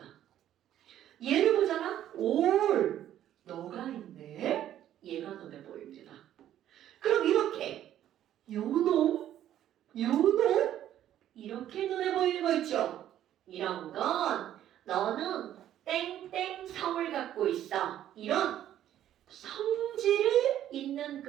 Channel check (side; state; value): left; quieter; 11.6 dB